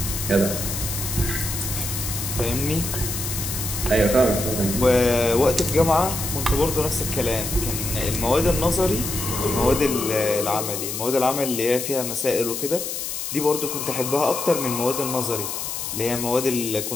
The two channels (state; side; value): noise; left; hiss, 4 dB below the sound